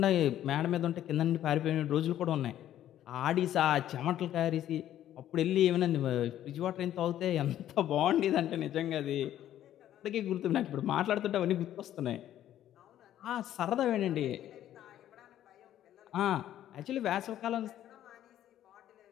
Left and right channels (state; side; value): quieter; right; 11.9 dB